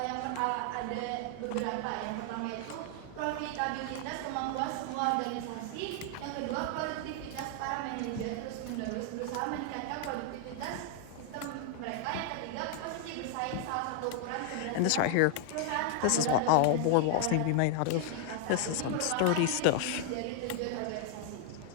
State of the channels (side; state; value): both; different; correlation 0.00